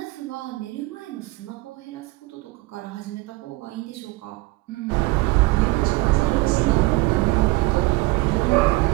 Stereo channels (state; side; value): quieter; left; 21.7 dB